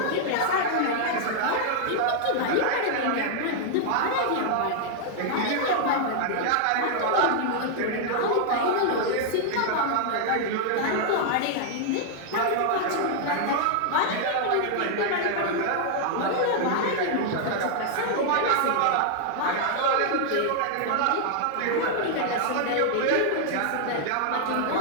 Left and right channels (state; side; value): different; both; correlation -0.01